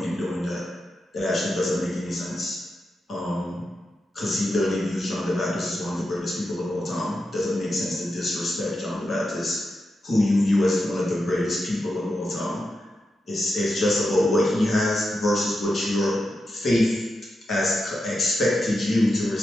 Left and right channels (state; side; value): normal; both; correlation 0.88